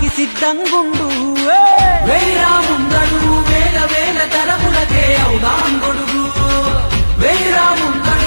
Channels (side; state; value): both; inverted; correlation -1.00